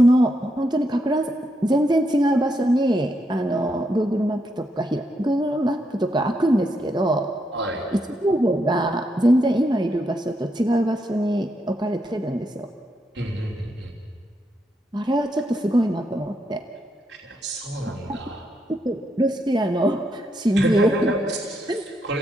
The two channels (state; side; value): normal; both; correlation 0.80